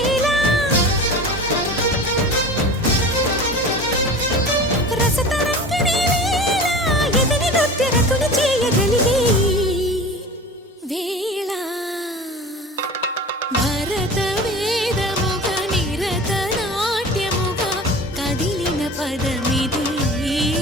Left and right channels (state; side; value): normal; both; correlation 0.36